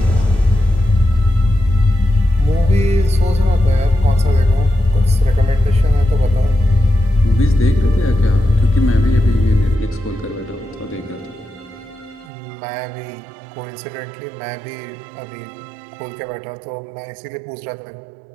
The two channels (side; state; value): left; drops out; at 12.3 s